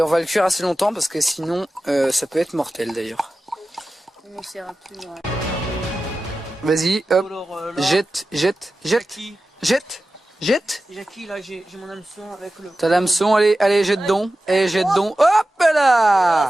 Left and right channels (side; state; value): both; normal; correlation 0.94